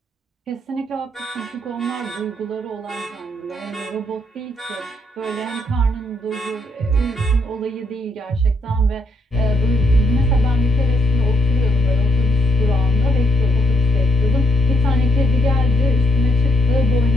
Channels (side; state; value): both; normal; correlation 0.73